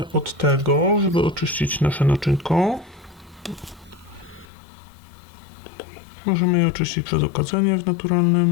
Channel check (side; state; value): right; drops out; at 4.5 s